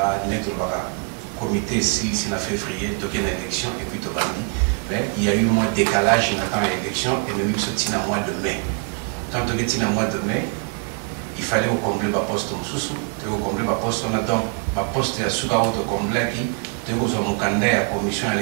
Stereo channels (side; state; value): left; quieter; 36.2 dB